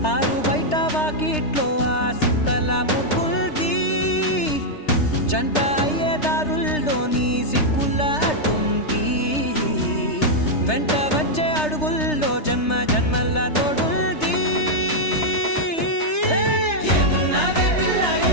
ఆరు బయట వాకిట్లో ఆ సుక్కల ముగ్గుల్ది జంట అయ్యే దారుల్లోని సిగ్గుల అడ్డుంది వెంట వచ్చే అడుగుల్లో జన్మ జన్మల తోడుంది ఏమున్నావే పిల్ల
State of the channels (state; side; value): late; right; 3.3 ms